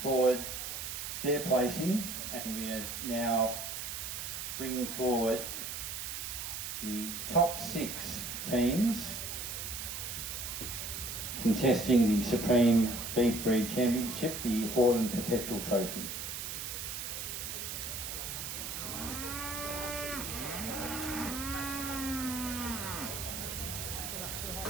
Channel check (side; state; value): right; noise; hiss, 5 dB below the sound